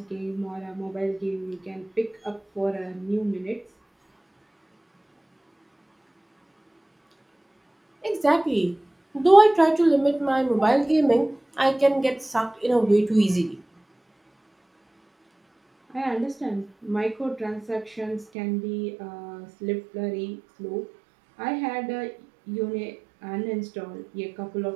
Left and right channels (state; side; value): drops out; left; at 18.2 s